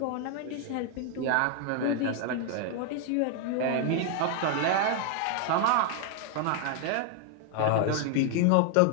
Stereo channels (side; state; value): both; different; correlation 0.00